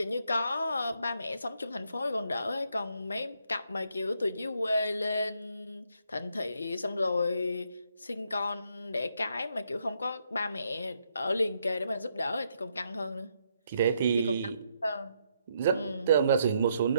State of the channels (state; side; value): inverted; both; correlation -0.75